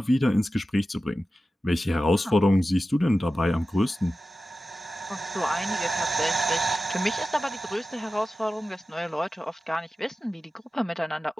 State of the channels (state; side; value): normal; both; correlation 0.94